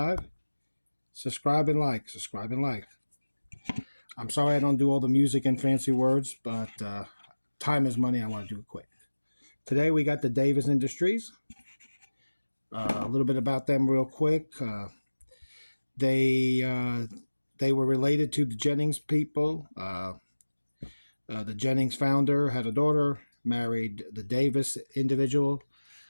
Subscribe and like. Subscribe and like. I'm sorry I don't do all the music and fancy words, but time is money. I want to do it quick. Today we got the Davis Industries. A little bit about them real quick. They they were related to the Jennings people. The Jennings founder had a daughter, married the Davis individual,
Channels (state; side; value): inverted; both; correlation -1.00